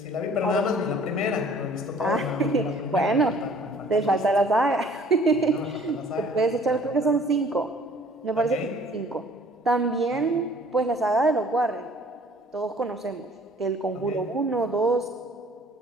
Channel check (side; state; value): both; normal; correlation 0.54